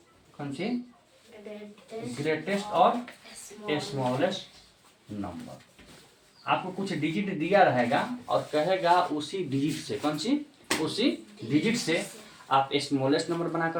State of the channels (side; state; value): both; identical; correlation 1.00